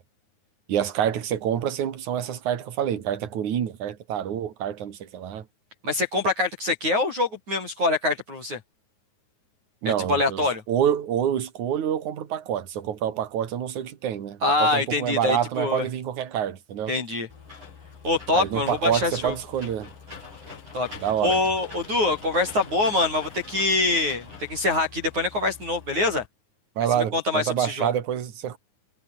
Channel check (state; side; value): late; left; 9.5 ms